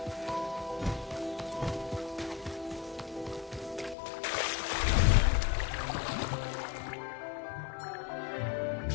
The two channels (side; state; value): right; drops out; at 4.0 s